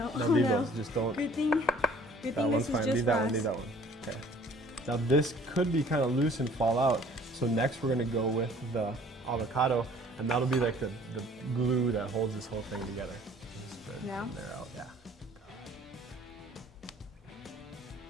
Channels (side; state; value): both; normal; correlation 0.53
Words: No, leave no. those. Just don't. Good thing. Good That thing one's this fine. is just Leave that for one. us. Leave that one. Okay. Now this could be kind of loose and fall out. So next we're going to go with the avocado, and that'll be like the glue that holds this whole thing together. Just spread Yeah. from there out. Yeah.